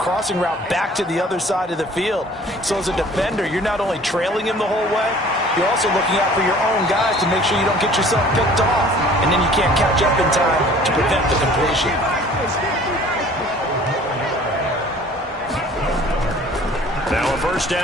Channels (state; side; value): normal; both; correlation 0.50